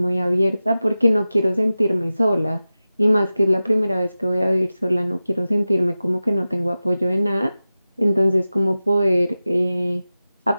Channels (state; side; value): inverted; both; correlation -0.95